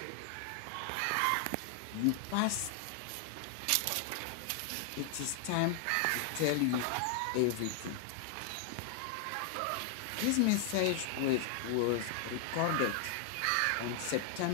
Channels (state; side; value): different; both; correlation 0.00